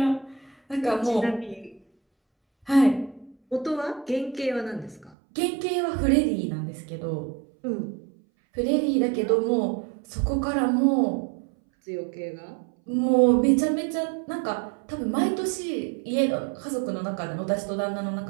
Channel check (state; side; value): drops out; left; at 5.2 s